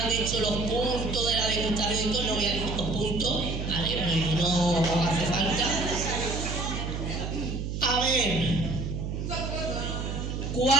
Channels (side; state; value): right; noise; hum, 4 dB below the sound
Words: hecho los puntos de la degustación y todo, no voy a decir los puntos, ¿vale? Porque no hace falta. A ver,